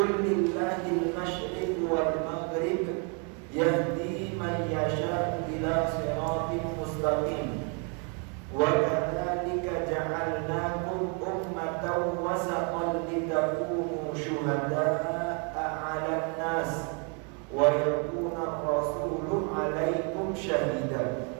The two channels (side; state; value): left; quieter; 36.9 dB